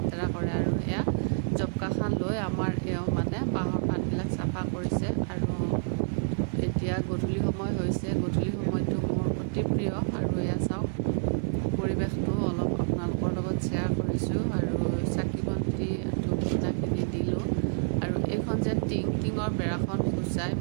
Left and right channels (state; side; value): silent; left; digital silence